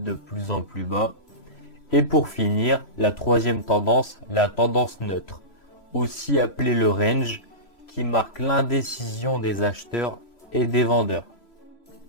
plus en plus bas. Et pour finir, la troisième tendance, la tendance neutre, aussi appelée le range, qui marque l'indécision des acheteurs et des vendeurs.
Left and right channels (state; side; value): late; right; 3.0 ms